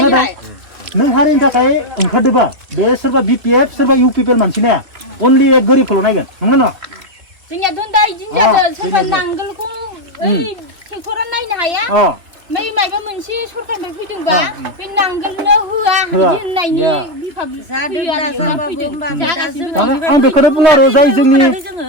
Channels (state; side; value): late; left; 3.0 ms